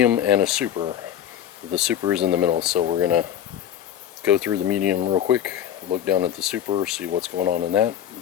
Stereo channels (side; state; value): right; quieter; 10.2 dB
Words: and a super. The super is in the middle, so we're going to go through the medium real quick, look down at the super, see what's going on in that,